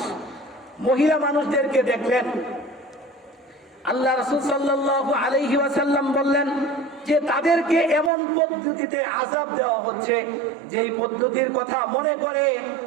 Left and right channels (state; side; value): drops out; left; at 8.1 s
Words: মহিলা মানুষদেরকে দেখলেন, আল্লাহ রাসূল সাল্লাল্লাহু আলাইহি ওয়াসাল্লাম বললেন যে তাদেরকে এমন পদ্ধতিতে আযাব দেওয়া হচ্ছে, যেই পদ্ধতির কথা মনে করে